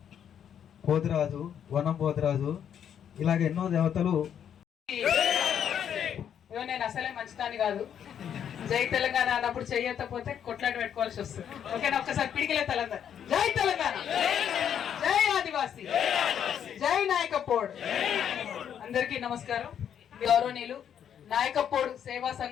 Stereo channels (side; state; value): right; quieter; 8.9 dB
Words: పోతిరాజు, వనం పోతిరాజు, ఇలాగ ఎన్నో దేవతలు. నేను అసలే మంచిదాన్ని కాదు, జై తెలంగాణ అన్నప్పుడు చెయ్యకపోతే కొట్లాట పెట్టుకోవాల్సి వస్తుంది. ఓకేనా? ఒక్కసారి పిడికిలే తెలంగాణ. జై తెలంగాణ, జై ఆదివాసీ, జై నాయకపోడు. అందరికీ నమస్కారం. గౌరవనీయులు నాయకపోడు సేవా